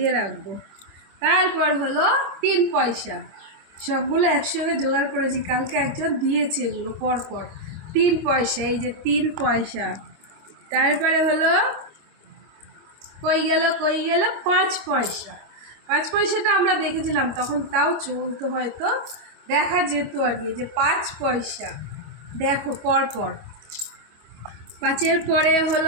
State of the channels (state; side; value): late; left; 25 ms